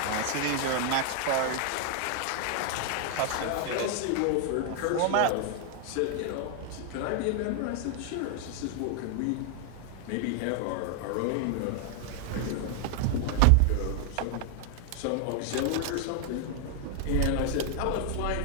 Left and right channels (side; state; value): both; different; correlation 0.00